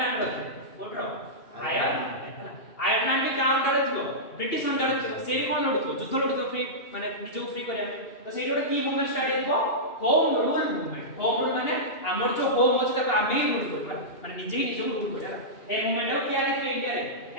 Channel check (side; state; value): right; late; 2.8 ms